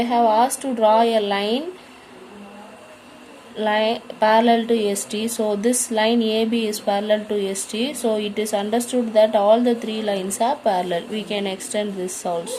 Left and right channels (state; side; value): identical; both; correlation 1.00